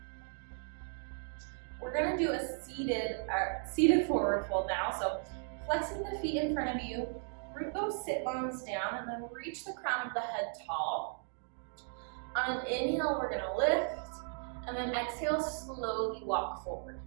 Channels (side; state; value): left; silent; 54 dB below the other